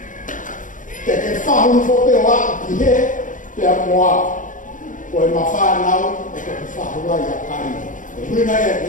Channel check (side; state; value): right; late; 0.38 ms